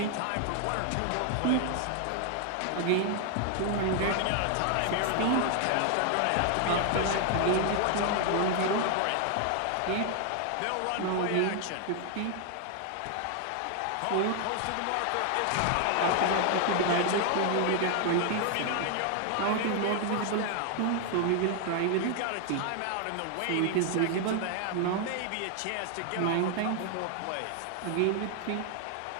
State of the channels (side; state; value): both; different; correlation 0.00